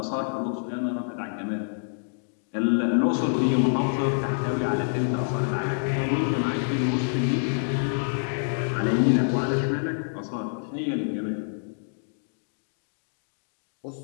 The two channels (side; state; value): right; silent; digital silence